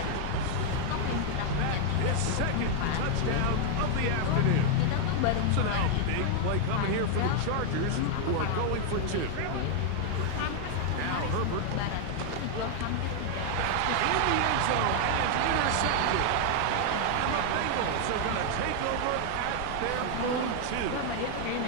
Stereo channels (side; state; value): both; different; correlation 0.00